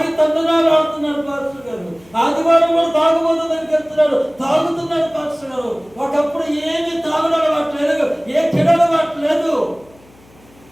తండ్రునాడు ఆడుతున్నాడు పాస్టర్ గారు, ఆదివారం కూడా తాగుబోతు దగ్గరికి వెళ్తున్నాడు, తాగుతున్నాడు పాస్టర్ గారు, ఒకప్పుడు ఏమి తాగుడు అలవాటు లేదు, ఏ చెడు అలవాటు లేదు,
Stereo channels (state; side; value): noise; left; hum, 28 dB below the sound